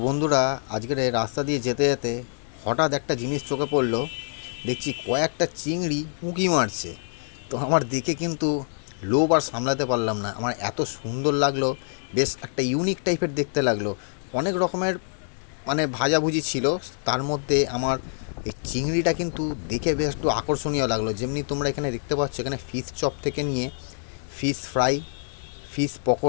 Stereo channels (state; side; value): silent; right; digital silence